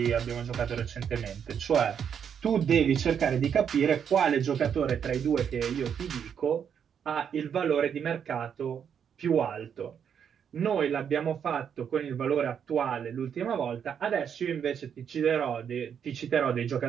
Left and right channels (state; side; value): quieter; left; 7.9 dB